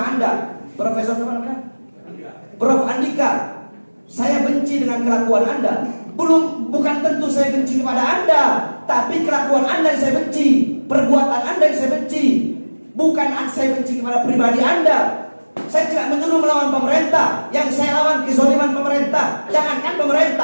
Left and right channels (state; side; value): inverted; both; correlation -1.00